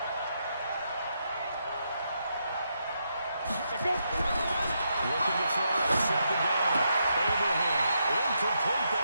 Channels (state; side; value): inverted; both; correlation -0.81